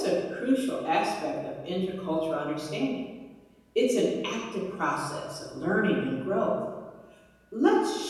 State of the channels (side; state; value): both; identical; correlation 1.00